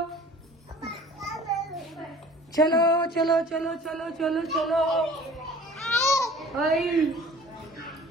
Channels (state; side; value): normal; both; correlation 0.48